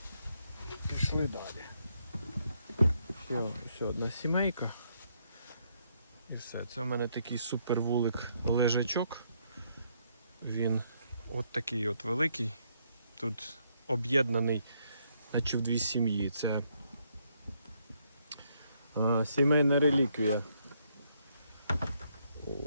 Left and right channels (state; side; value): inverted; both; correlation -0.74